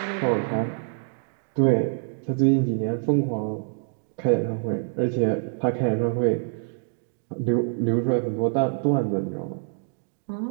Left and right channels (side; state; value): left; silent; digital silence